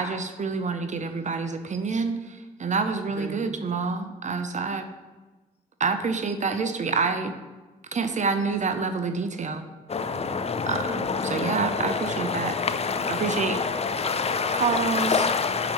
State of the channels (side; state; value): both; normal; correlation 0.16